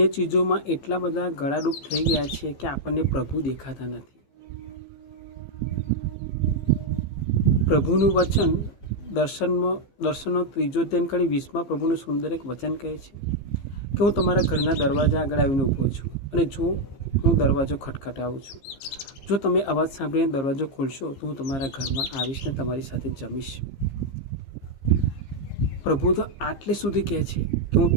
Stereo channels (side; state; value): right; late; 15 ms